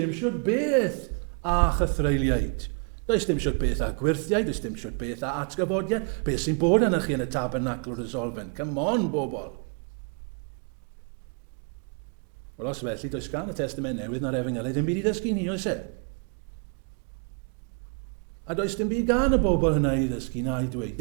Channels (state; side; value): quieter; left; 39.1 dB